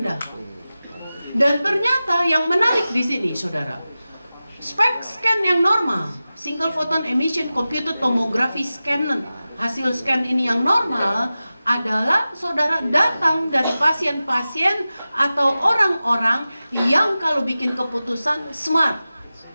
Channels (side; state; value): both; inverted; correlation -0.95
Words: Dan ternyata yang menarik di sini, saudara, SPECT scan yang normal, single photon emission computed tomography scan, hasil scan ini yang normal adalah saudara datang dari pasien-pasien atau orang-orang yang kalau bikin keputusan smart